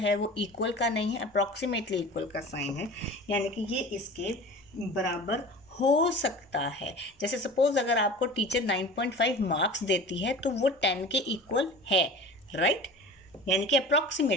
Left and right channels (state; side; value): normal; both; correlation 0.37